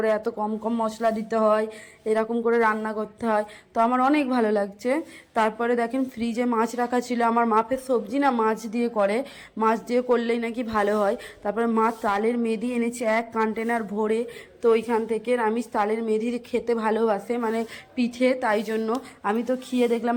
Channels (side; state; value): both; identical; correlation 1.00